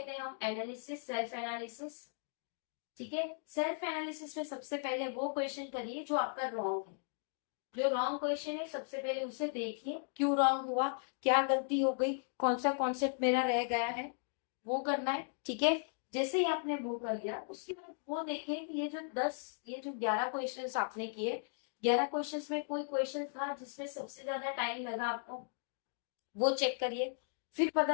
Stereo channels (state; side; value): silent; right; digital silence